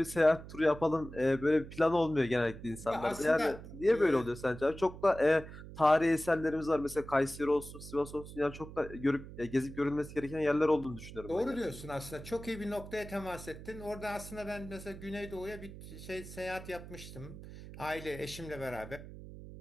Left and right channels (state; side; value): noise; right; hum, 13 dB below the sound